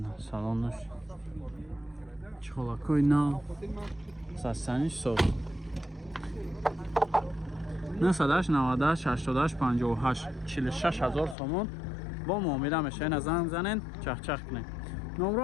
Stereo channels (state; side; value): drops out; right; at 11.4 s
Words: салонаш чхолакои нав састаниш соз 988 46000 сомон бо муомила меша. ина занг занед чахчах кунед. номро